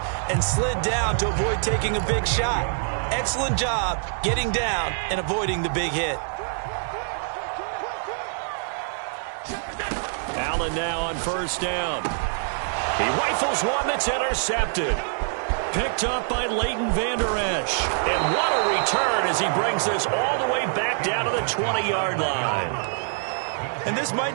and slid down to avoid taking a big shot. Excellent job getting down and avoiding the big hit. Allen now on 1st down. He rifles one that's intercepted. Picked up by Leighton Vander Esch. And what a return as he brings this all the way back down to the 20-yard line. And this might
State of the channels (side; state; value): left; silent; 62 dB below the other